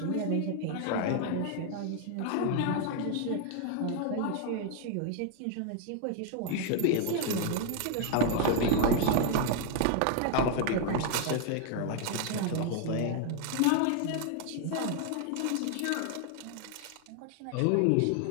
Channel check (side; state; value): both; different; correlation 0.00